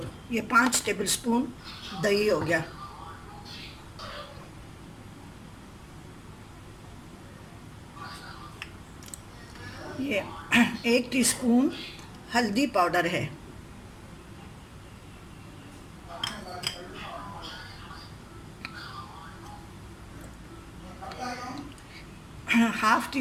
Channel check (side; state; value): both; identical; correlation 1.00